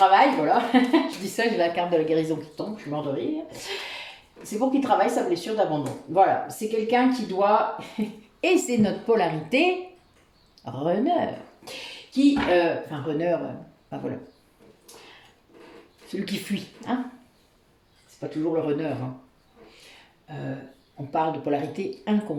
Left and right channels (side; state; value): both; identical; correlation 1.00